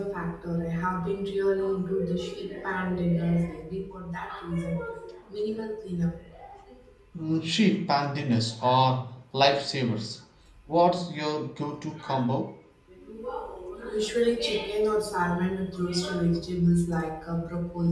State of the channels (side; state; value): both; identical; correlation 1.00